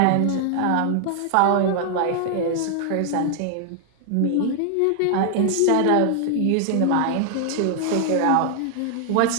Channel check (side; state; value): both; different; correlation 0.00